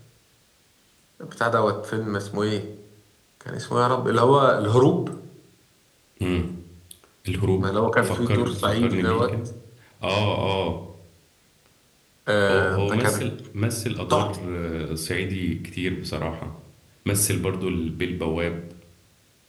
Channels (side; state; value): both; identical; correlation 1.00